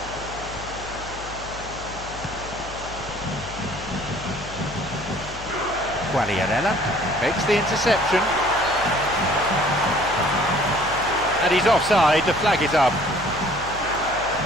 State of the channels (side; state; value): left; noise; hum, 14 dB below the sound